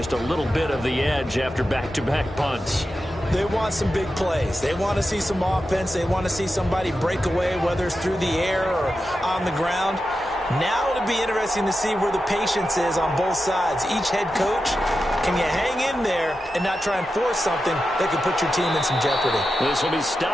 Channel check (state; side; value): normal; both; correlation 0.90